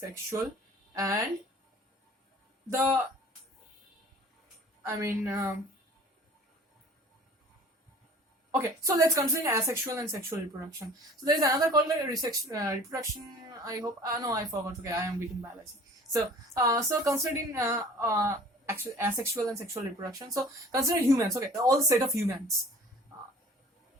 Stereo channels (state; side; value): normal; both; correlation 0.47